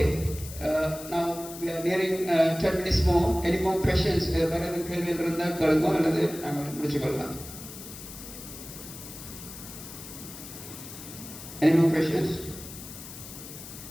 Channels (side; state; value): left; noise; hiss, 13 dB below the sound